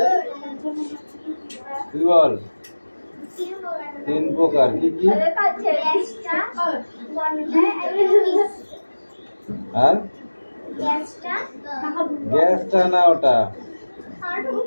তুই বল। 3 প্রকার, কি কি? আর গ্যাসটা না, ওটা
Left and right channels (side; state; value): both; inverted; correlation -1.00